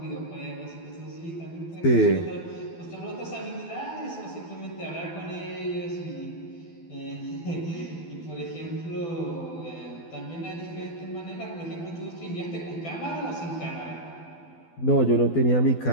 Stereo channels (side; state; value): right; late; 12 ms